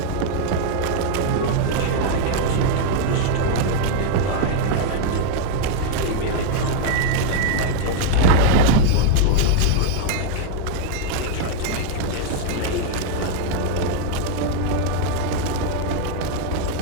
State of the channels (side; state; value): both; different; correlation -0.01